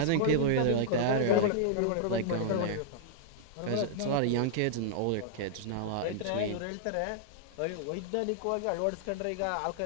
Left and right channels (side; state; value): both; different; correlation -0.01